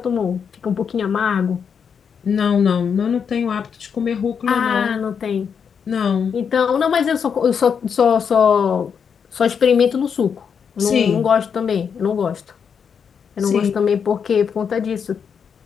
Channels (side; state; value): right; quieter; 6.8 dB